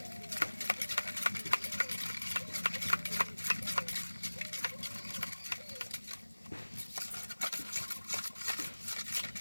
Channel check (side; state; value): both; inverted; correlation -1.00